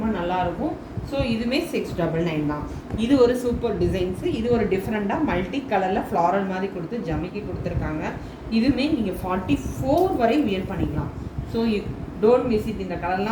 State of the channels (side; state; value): both; identical; correlation 1.00